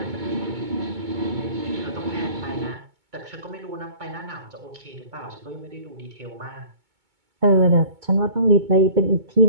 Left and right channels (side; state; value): left; late; 2.2 ms